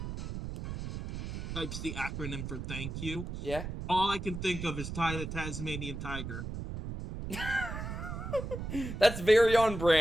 types the acronym for thank you, Yeah. all I can think of is Ty the Tasmanian Tiger. That's very on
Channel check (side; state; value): right; noise; rumble, 6 dB below the sound